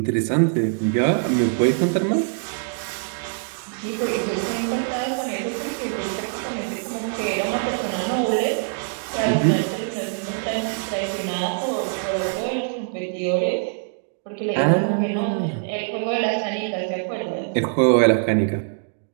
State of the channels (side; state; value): left; silent; digital silence